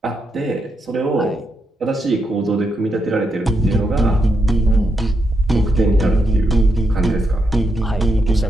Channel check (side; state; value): both; normal; correlation 0.82